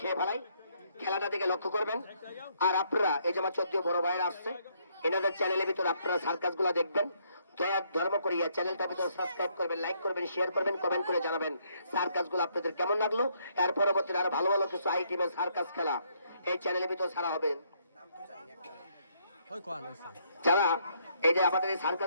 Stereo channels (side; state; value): both; inverted; correlation -0.71